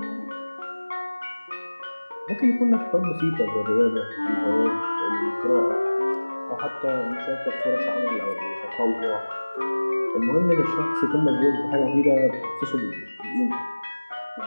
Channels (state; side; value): inverted; both; correlation -1.00